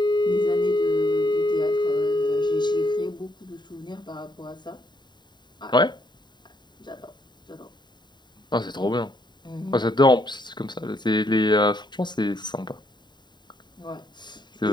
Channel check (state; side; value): late; right; 0.21 ms